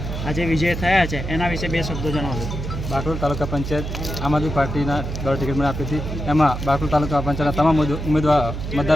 આજે વિજય થયા છે એના વિશે બે શબ્દો જણાવો. બાકરોલ તાલુકા પંચાયત આમ આદમી પાર્ટીના દ્વારા ટિકિટ મને આપી હતી. એમાં બાકરોલ તાલુકા પંચાયતના તમામ ઉમેદવાર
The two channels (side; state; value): right; noise; hum, 6 dB below the sound